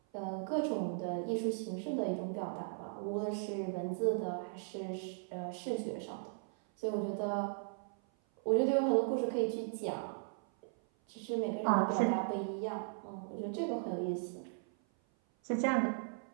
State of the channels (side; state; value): left; silent; 53 dB below the other